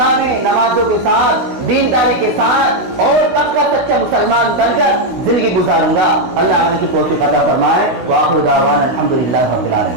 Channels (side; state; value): left; late; 16 ms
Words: मैं नमाजों के साथ, दीनदारी के साथ और पक्का सच्चा मुसलमान बनकर जिंदगी गुजारूंगा। अल्लाह हमें की तौफीक अता फरमाए। व आखिर दावाना अल्हम्दुलिल्लाहि रब्बिल